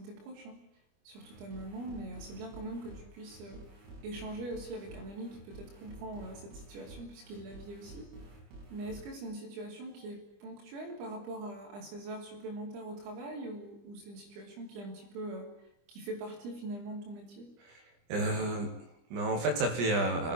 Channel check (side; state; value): left; late; 25 ms